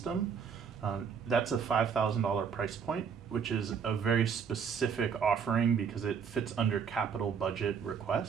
That's a $5,000 price point, which is a very specific offering because it fits under capital budget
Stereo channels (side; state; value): left; quieter; 6.7 dB